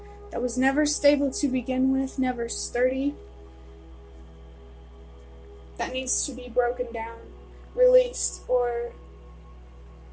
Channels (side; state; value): both; identical; correlation 1.00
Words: that was never stable to begin with, never sturdy, that needs to be broken down, released, or